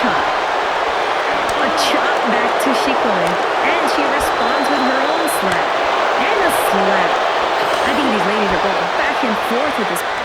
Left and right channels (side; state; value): both; identical; correlation 1.00